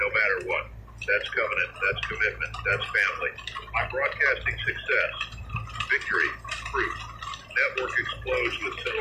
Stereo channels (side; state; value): both; identical; correlation 1.00